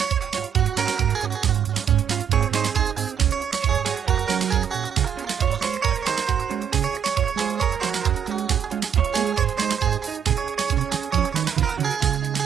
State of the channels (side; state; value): left; quieter; 8.2 dB